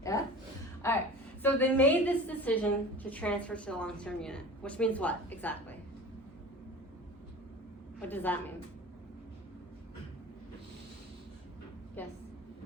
Yeah? All right. So they made this decision to transfer to the long-term unit, which means what exactly? What does that mean? Yes.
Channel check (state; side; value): normal; both; correlation 0.37